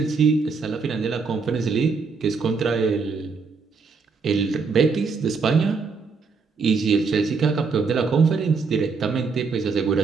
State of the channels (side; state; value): left; quieter; 4.9 dB